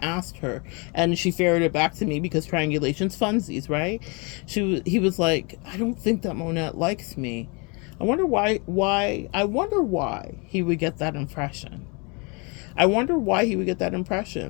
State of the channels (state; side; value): quieter; right; 31.6 dB